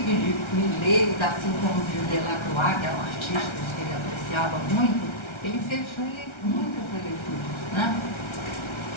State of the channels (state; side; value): late; right; 1.4 ms